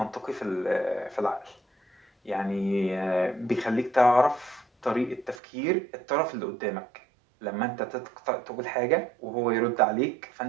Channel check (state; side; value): drops out; left; at 5.4 s